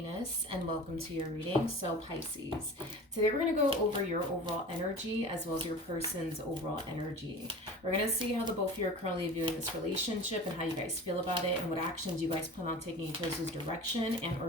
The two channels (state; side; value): normal; both; correlation 0.37